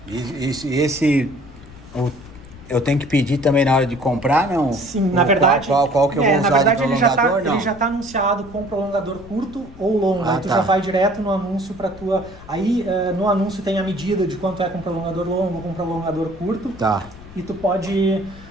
eu tenho que pedir também na hora de comprar, não? Sim, na verdade... Qual que eu vou usar de prolongador, ele já tá anunciado com prolongador curto ou longo. Aí tu já vai direto no anúncio para tua... Aí no anúncio tem a medida de quanto é com prolongador longo ou com prolongador curto. Tá. E tu pode...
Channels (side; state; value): left; noise; rumble, 19 dB below the sound